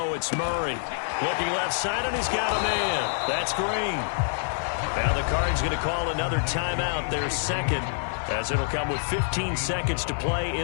it's Murray. Looking left side, and he's got a man. That's Green. Now the Cards going to call another timeout, their 2nd, as it'll come with 15 seconds to play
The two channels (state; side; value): silent; right; 57 dB below the other